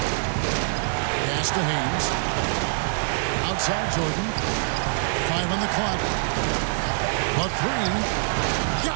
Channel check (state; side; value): silent; left; 62 dB below the other